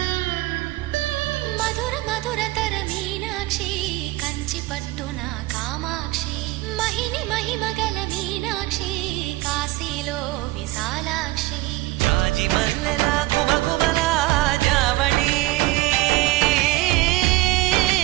మధుర మధురతర మీనాక్షి కంచి పట్టున కామాక్షి మహిని మహిమగల మీనాక్షి కాశీలో విశాలాక్షి జాజి మల్లెలా గుమగుమలా జావళి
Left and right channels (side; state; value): left; quieter; 19.4 dB